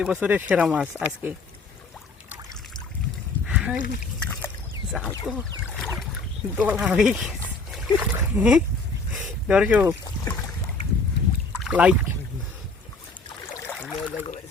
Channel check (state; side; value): quieter; right; 3.6 dB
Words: বছরের সেরা মাছ আজকে। জাল তো দোলা হয়ে গেছে দর্শক। লাইক